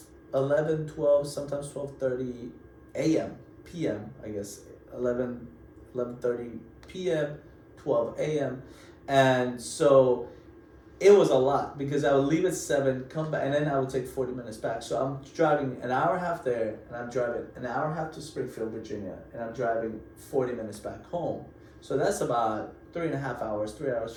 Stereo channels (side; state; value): both; identical; correlation 1.00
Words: 11, 12, sometimes 12:30 a.m. p.m. I guess 11:30 p.m. 12 a.m. And so it was a lot because I would leave at 7, come back, and then I would take 40 minutes back. So I'm driving an hour and a half there, and I'm driving an hour and a half to Springfield, Virginia, and I'm driving 40 minutes back home. So that's about 3.5 hours, 3 hours,